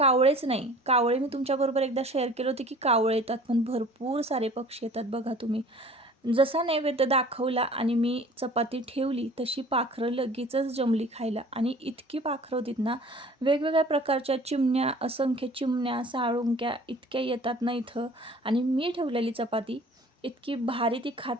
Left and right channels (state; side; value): normal; both; correlation 0.47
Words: नाही, कावळे मी तुमच्याबरोबर एकदा शेअर केले होते की कावळे येतात, पण भरपूर सारे पक्षी येतात. बघा तुम्ही, जसा नैवेद्य दाखवला आणि मी चपाती ठेवली तशी पाखरं लगेचच जमली खायला. आणि इतकी पाखरं होतीत ना, वेगवेगळ्या प्रकारच्या चिमण्या, असंख्य चिमण्या, साळुंक्या इतक्या येतात ना इथं. आणि मी ठेवलेली चपाती इतकी भारी ती